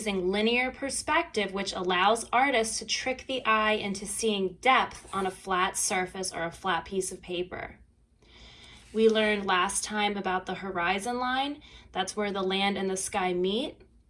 linear perspective, which allows artists to trick the eye into seeing depth on a flat surface or a flat piece of paper. We learned last time about the horizon line. That's where the land and the sky meet.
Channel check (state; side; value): identical; both; correlation 1.00